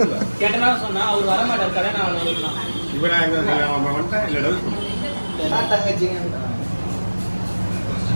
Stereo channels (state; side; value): inverted; both; correlation -1.00